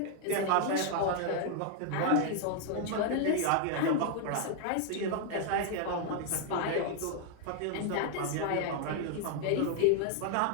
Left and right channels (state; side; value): different; both; correlation 0.00